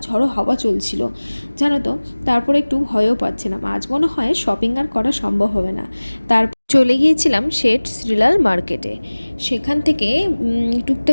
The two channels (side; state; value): both; inverted; correlation -1.00